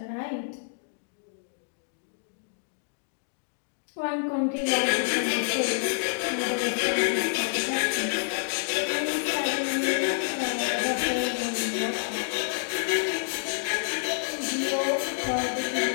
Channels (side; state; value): right; silent; digital silence